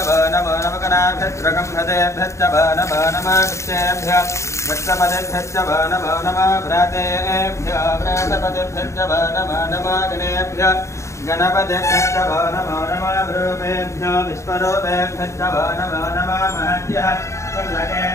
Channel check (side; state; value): right; late; 0.14 ms